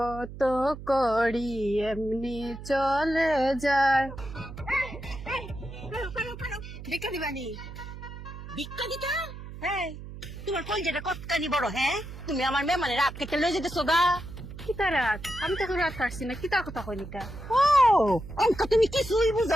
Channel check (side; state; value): right; noise; hum, 12 dB below the sound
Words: করি এমনি চলে যায়। ভিক্ষা দিবানি ভিক্ষা দিতা হ্যাঁ তোমার কলজেটা কতখানি বড় হ্যাঁ তুমি আমার মেমানে রাত কেটে লয়ে যেতেছো গা কিতা রাত আমি তো রাত পারছি না কিতা কথা কইলিটা ও অঙ্ক তুমি কিছুই বুঝো